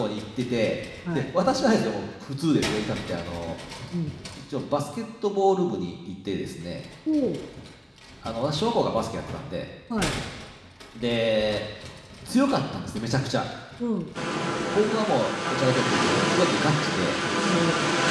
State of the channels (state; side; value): identical; both; correlation 1.00